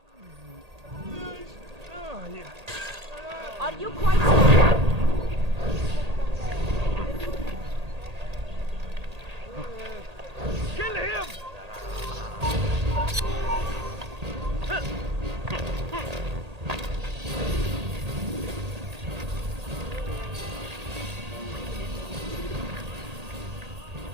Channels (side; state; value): left; late; 1.8 ms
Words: Are you quite... Kill him!